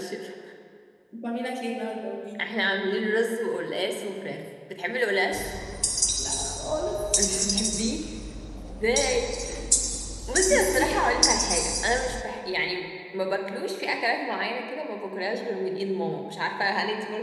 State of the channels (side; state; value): both; identical; correlation 1.00